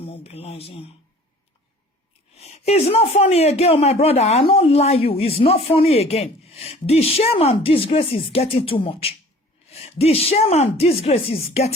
It's not funny again, my brother. I don't lie you. It's not funny again. The shame and disgrace is getting too much. The shame and disgrace is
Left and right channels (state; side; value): normal; both; correlation 0.48